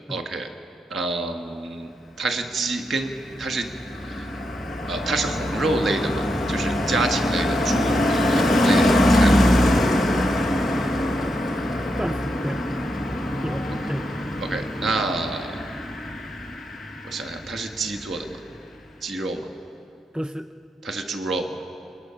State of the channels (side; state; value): both; normal; correlation 0.83